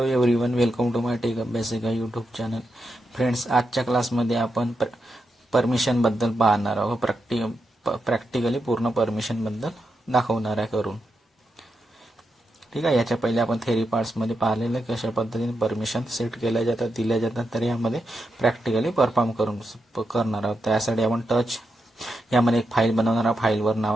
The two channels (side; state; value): both; normal; correlation 0.86